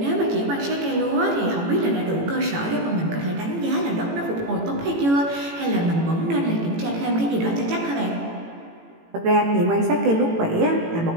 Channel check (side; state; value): left; late; 18 ms